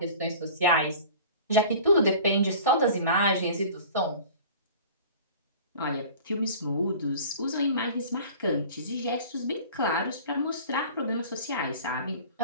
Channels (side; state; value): both; inverted; correlation -0.42